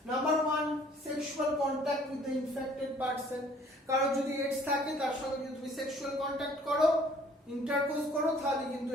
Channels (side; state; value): both; normal; correlation 0.57